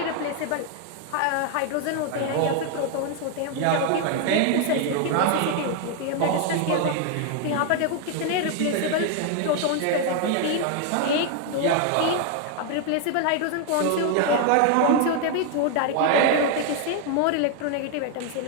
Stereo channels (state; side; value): different; both; correlation 0.00